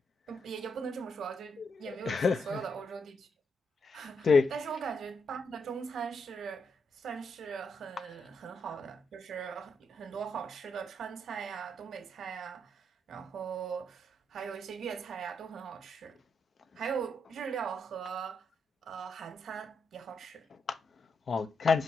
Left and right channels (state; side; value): normal; both; correlation 0.81